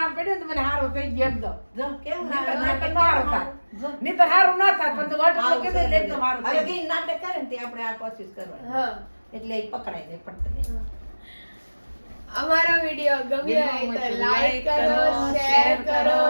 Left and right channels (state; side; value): inverted; both; correlation -1.00